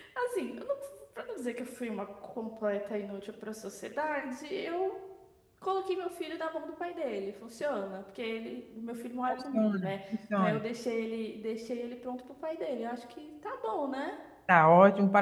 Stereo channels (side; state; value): both; identical; correlation 1.00